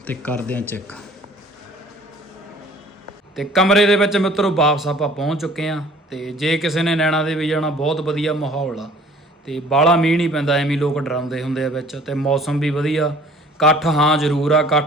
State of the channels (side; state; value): both; normal; correlation 0.52